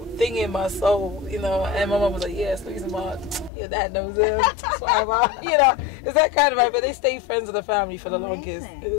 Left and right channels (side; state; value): right; drops out; at 3.5 s